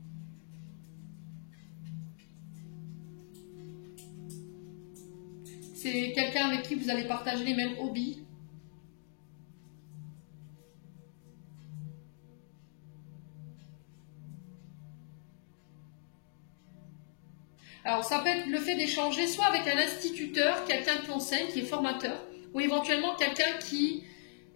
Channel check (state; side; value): silent; right; digital silence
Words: C'est quelqu'un avec qui vous allez partager les mêmes hobbies. Alors ça peut être le fait d'échanger soit avec un instituteur, quelqu'un qui enseigne, qui est formateur, ou éventuellement quelqu'un qui